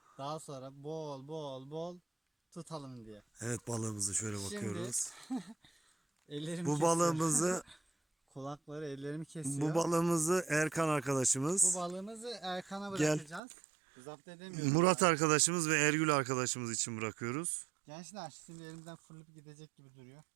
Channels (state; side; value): drops out; left; at 13.4 s